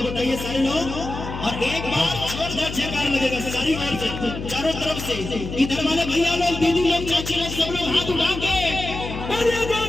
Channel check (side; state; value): left; noise; hum, 8 dB below the sound